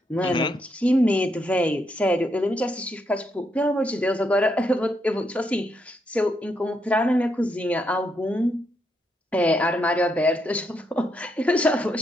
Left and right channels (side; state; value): both; normal; correlation 0.79